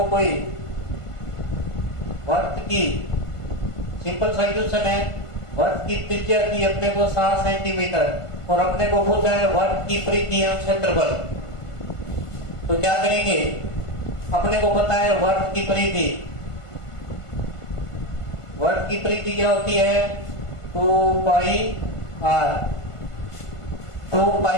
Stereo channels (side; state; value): right; late; 1.5 ms